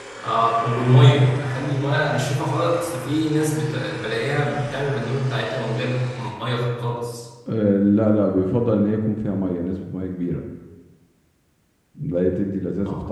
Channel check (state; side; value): identical; both; correlation 1.00